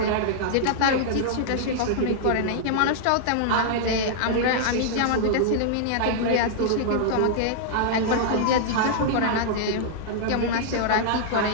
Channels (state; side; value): different; both; correlation -0.01